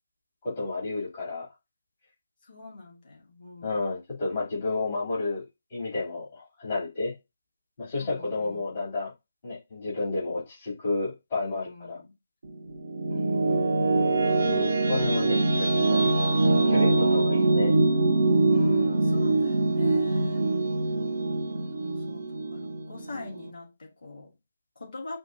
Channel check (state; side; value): inverted; both; correlation -0.86